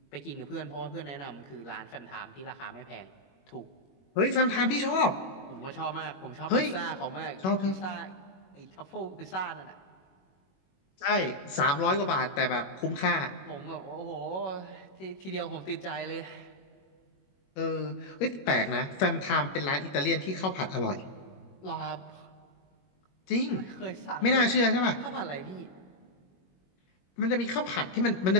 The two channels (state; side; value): late; right; 21 ms